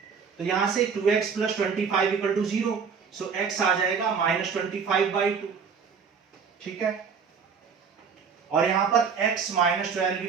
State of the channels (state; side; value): quieter; left; 6.1 dB